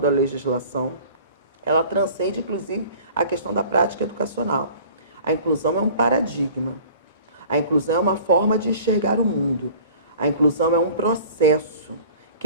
legislação, ela transcende, inclusive, a questão da prática educacional. A inclusão é um paradigma. A inclusão é uma forma de enxergar o mundo. A inclusão é um processo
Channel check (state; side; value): inverted; both; correlation -0.45